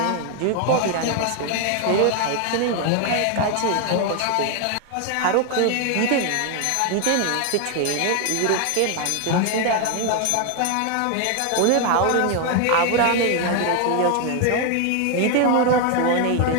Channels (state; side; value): different; both; correlation 0.01